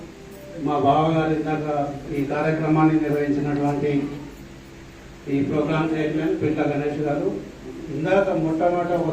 మా బావగారు ఇందాక ఈ కార్యక్రమాన్ని నిర్వహించినటువంటి ఈ ప్రోగ్రామ్ చైర్మన్ పింట గణేష్ గారు ఇందాక మొట్టమొదట ఒక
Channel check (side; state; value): both; identical; correlation 1.00